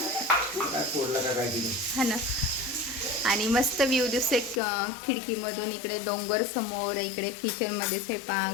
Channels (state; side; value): drops out; right; at 4.6 s